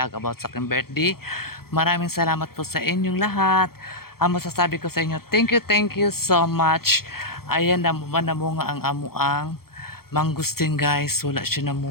about sa aking birthday. Maraming salamat po sa inyong lahat. Ang masasabi ko sa inyo, thank you so much. Ayan, namunga ang amuang mangustin guys. Wala siya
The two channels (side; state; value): right; late; 0.94 ms